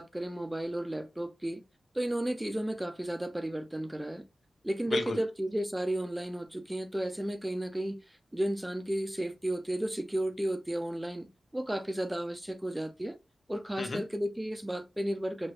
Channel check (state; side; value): normal; both; correlation 0.97